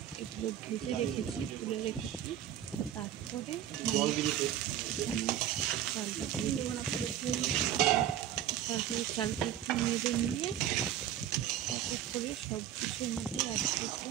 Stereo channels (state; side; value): quieter; left; 11.0 dB